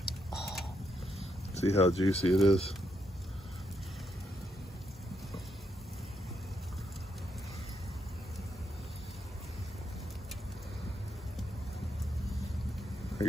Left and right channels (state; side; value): normal; both; correlation 0.79